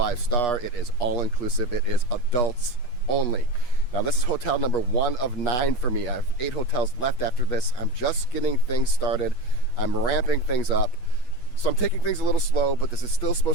it is all-inclusive, it is adults only. Now this is hotel number 1 of 9 for me. I have 8 hotels left after this. I'm just getting things started. I'm ramping things up. So I'm taking things a little slow, but this is still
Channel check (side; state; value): right; late; 8.3 ms